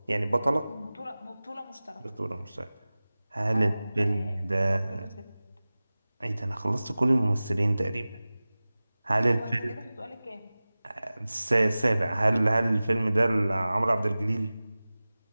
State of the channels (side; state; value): both; inverted; correlation -0.98